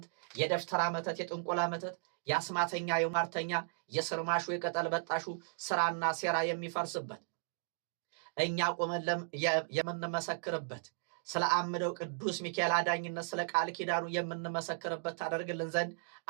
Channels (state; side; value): silent; left; digital silence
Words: የደፍተራ መተት፣ የጥንቆላ መተት፣ የአስማተኛ የሟርተኛ የስርማሹ የቅጠል በጣሹ ስራና ሴራ የሚፈርስበት፣ እኛ ቆመን የምንመሰክርበት፣ ስለ አምደው ቅዱስ ሚካኤል አዳኝነት ስለ ቃል ኪዳኑ የምንመሰክርበት ታደርግልን ዘንድ